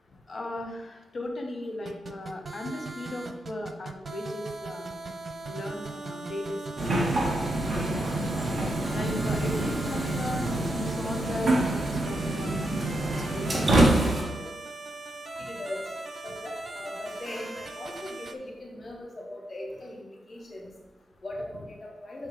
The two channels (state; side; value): normal; both; correlation 0.82